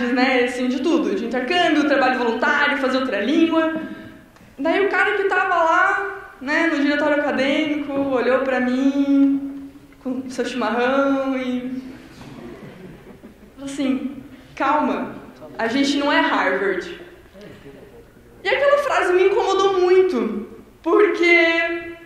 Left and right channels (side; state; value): both; identical; correlation 1.00